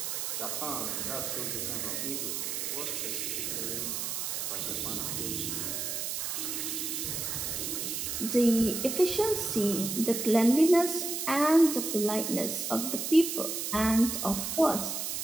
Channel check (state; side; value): noise; right; hiss, 3 dB below the sound